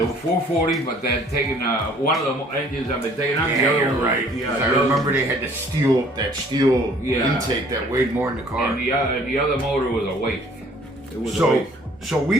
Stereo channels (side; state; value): both; normal; correlation 0.56